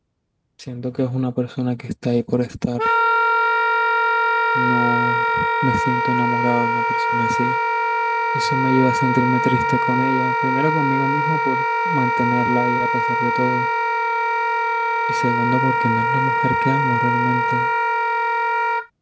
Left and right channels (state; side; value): identical; both; correlation 1.00